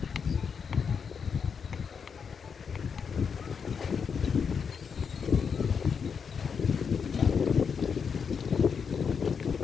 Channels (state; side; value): quieter; right; 6.3 dB